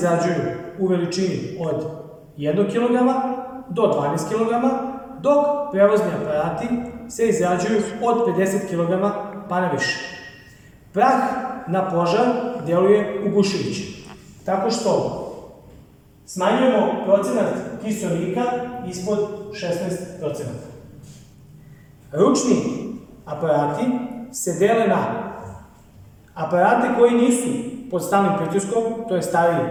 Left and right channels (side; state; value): both; identical; correlation 1.00